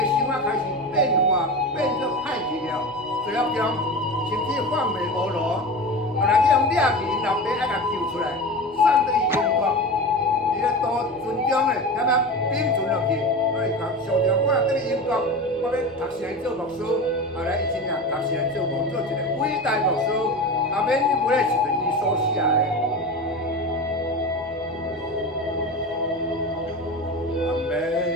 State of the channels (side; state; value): both; normal; correlation 0.28